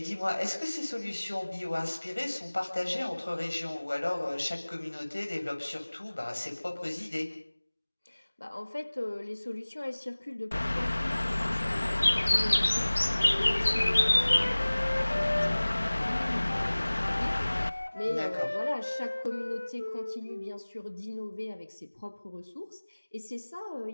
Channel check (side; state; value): both; inverted; correlation -1.00